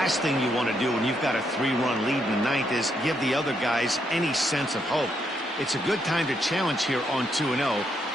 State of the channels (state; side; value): normal; both; correlation 0.77